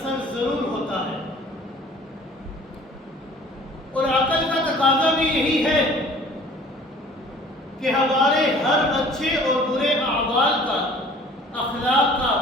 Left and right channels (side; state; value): both; normal; correlation 0.50